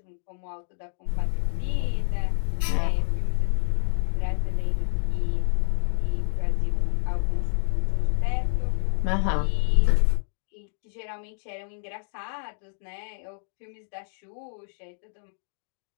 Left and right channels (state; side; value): silent; right; digital silence